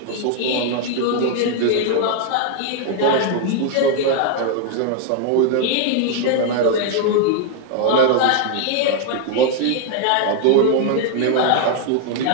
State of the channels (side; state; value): both; different; correlation 0.00